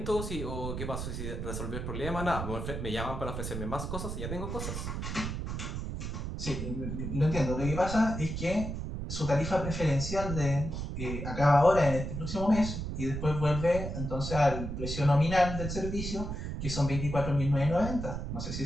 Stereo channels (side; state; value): right; noise; rumble, 4 dB below the sound